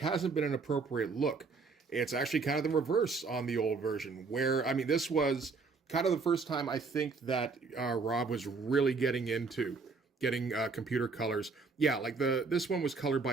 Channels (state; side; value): quieter; left; 4.4 dB